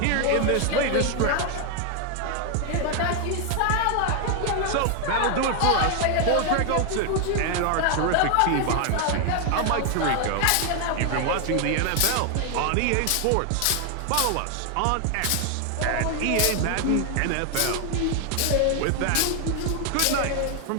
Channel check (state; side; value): different; both; correlation 0.00